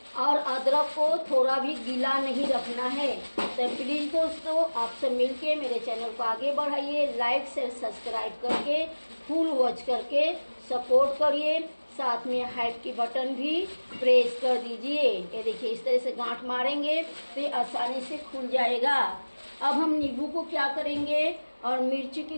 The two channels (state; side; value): inverted; both; correlation -1.00